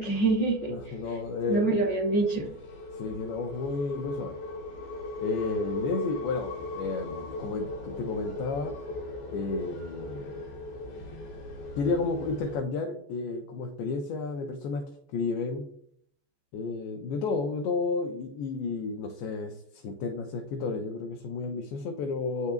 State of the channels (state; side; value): late; right; 14 ms